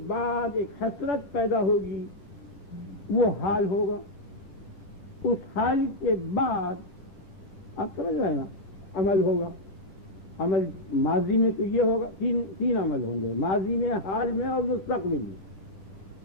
بعد ایک حسرت پیدا ہوگی، وہ حال ہوگا. اس حال کے بعد آپ سمجھ رہے ہیں نا عمل ہوگا. عمل ماضی میں تو یہ ہوگا، تین عمل ہوں گے، ماضی میں، حال میں اور مستقبل میں.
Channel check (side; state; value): right; late; 10 ms